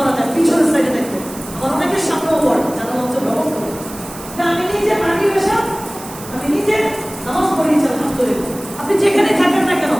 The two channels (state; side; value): noise; right; hiss, 15 dB below the sound